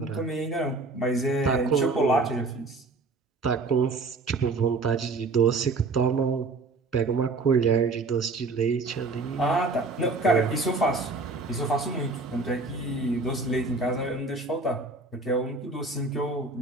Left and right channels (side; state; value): left; quieter; 3.6 dB